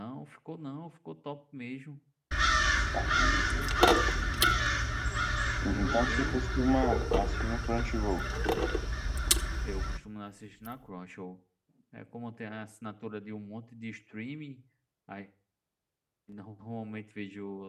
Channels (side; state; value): both; identical; correlation 1.00